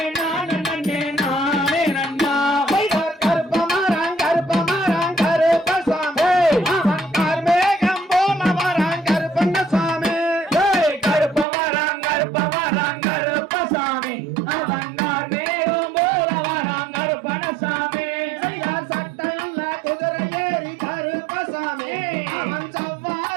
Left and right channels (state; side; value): drops out; left; at 11.5 s